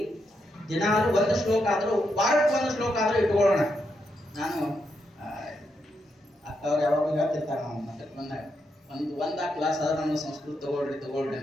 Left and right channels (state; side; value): normal; both; correlation 0.82